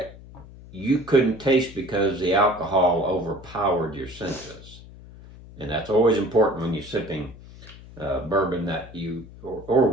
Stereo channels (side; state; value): left; noise; hum, 18 dB below the sound